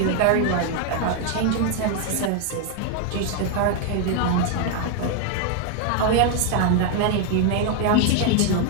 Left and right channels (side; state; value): both; different; correlation 0.01